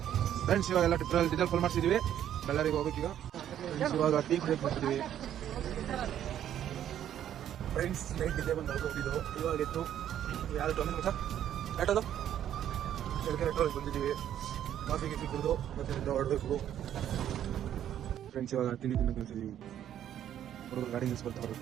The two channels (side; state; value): left; quieter; 10.7 dB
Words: ಫ್ರೆಂಡ್ಸ್ ಇವಾಗೆಲ್ಲ ಡೀಸೆಲ್ ಫುಲ್ ಮಾಡಿಸಿದೀವಿ. ಬಳ್ಳಾರಿಗೆ ಹೋಗ್ಬೇಕೀಗ. ಇವಾಗ ಟೀ ಕುಡಿಯಕ್ಕೆ ಬರ್ತಿದೀವಿ ಫ್ರೆಂಡ್ಸ್. ನೈಟ್ ಇದೇ ಬಂದು ಹೋಗಿದ್ದು. ಇವಾಗ ಇತ್ತು ಯಾರು ಟೋಮಿಂಗ್ ಸರ್ ಆಟೋದು ಕೆಳಗೆ ಬಂದಿದ್ದೀವಿ. ಕಾಫಿ ಗಿಫಿ ಕುಡಿದು ಮತ್ತೆ ಹೊರಡಬೇಕು ಫ್ರೆಂಡ್ಸ್. ಇವಾಗ ತಿಂಡಿ ತಿನ್ನಕ್ಕೆ ಕಳಿಸಿದೀವಿ. ಹುಡುಗರು ಗಾಡಿ ನಿಲ್ಸ್ಕೊಳ್ತಾರೆ